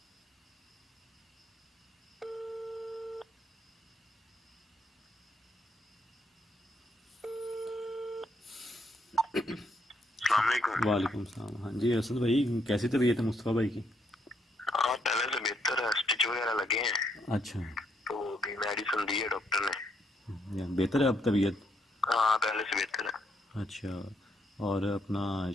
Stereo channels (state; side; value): normal; both; correlation 0.74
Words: वालेकुम सलाम। हाँ जी असद भाई, कैसी तबीयत है मुस्तफ़ा भाई की? हाँ पहले से बेहतर है, स्टिच वगैरह लगे हैं। अच्छा, तो अभी मेडिसिन दी है डॉक्टर ने। या बेहतर है अब तबीयत? हाँ पहले से बेहतर है। अच्छा, और अपना